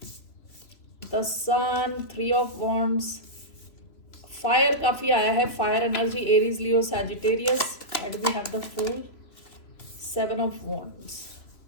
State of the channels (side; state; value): right; late; 3.0 ms